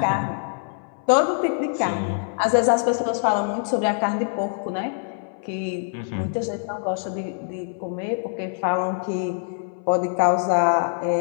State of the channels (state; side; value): silent; right; 60 dB below the other